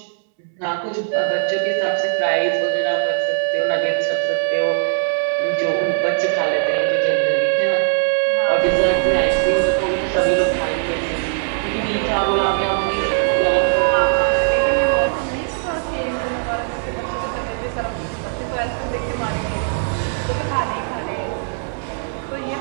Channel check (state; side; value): silent; left; 66 dB below the other